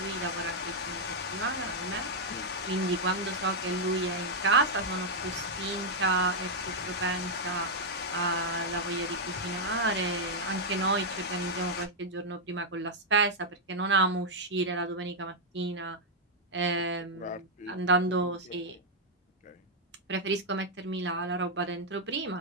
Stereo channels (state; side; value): normal; both; correlation -0.03